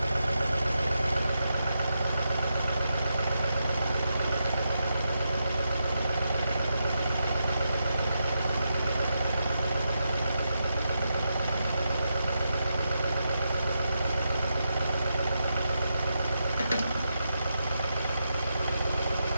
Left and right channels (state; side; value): inverted; both; correlation -0.85